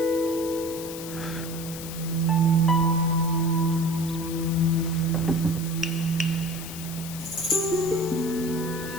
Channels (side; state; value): left; noise; hiss, 11 dB below the sound